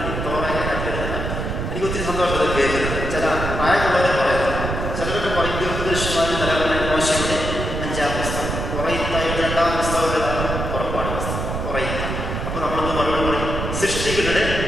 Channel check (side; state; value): right; noise; rumble, 3 dB below the sound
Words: തോറ. എനിക്ക് ഒത്തിരി സന്തോഷം അത് കേൾക്കുന്നത്. ചില